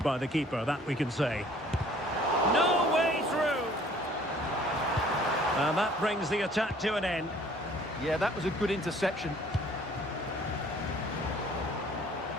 by the keeper, that we can say. No way through. And that brings the attack to an end. Yeah, that was a good interception.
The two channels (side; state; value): both; normal; correlation 0.55